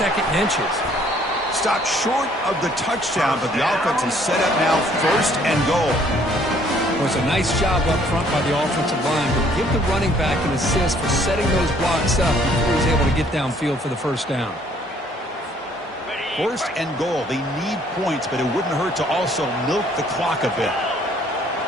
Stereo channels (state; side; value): normal; both; correlation 0.61